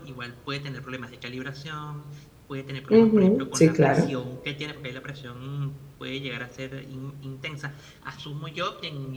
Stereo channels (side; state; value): both; identical; correlation 1.00